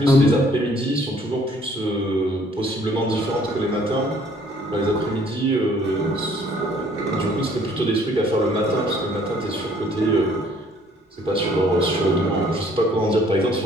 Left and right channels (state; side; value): normal; both; correlation 0.60